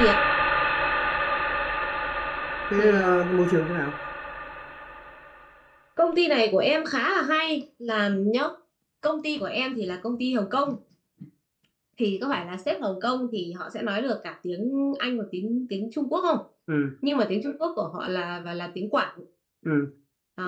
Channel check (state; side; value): identical; both; correlation 1.00